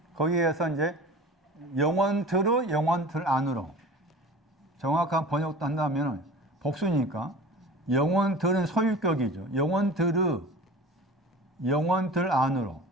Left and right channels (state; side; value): normal; both; correlation 0.38